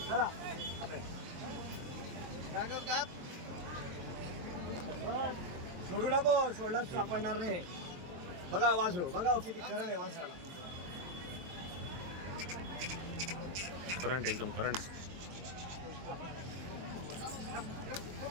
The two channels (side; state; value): left; late; 23 ms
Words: चला. सोडू नको, सोडलाच सापडणार नाही. बघा वासरू, बघा किती करण आहे वासराला. करंट एकदम करंट.